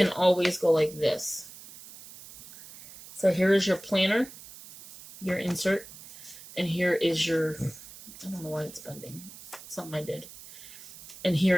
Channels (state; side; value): noise; right; hiss, 17 dB below the sound